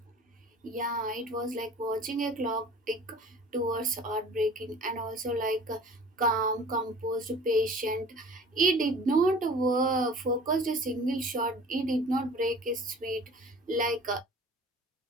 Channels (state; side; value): normal; both; correlation 0.45